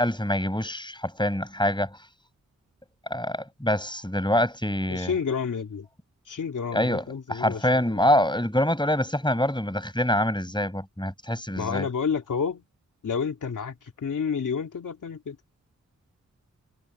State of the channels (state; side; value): normal; both; correlation 0.49